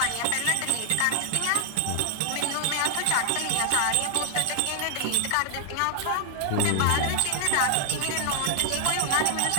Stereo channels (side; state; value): both; different; correlation 0.00